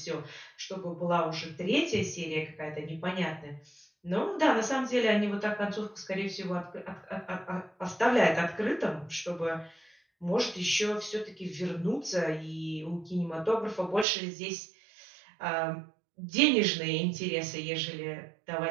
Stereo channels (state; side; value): drops out; left; at 14.1 s